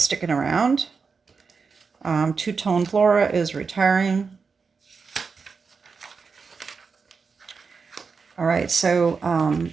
around. Two-Tone Flora is retiring. All right, so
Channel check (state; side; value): quieter; left; 5.1 dB